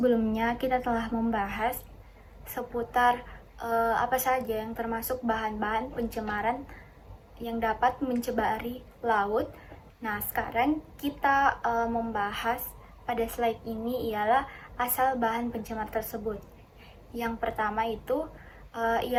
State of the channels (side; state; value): both; identical; correlation 1.00